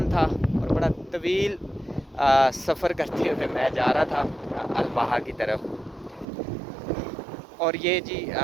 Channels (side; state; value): left; drops out; at 6.2 s